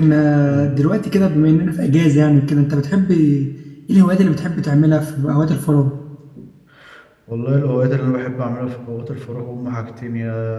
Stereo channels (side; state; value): both; identical; correlation 1.00